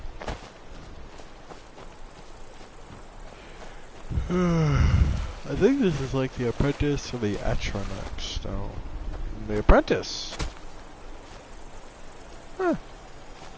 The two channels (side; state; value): both; identical; correlation 1.00